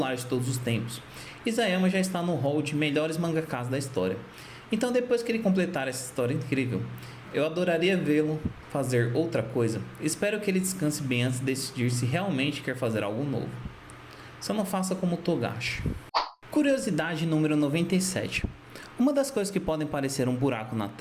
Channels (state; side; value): identical; both; correlation 1.00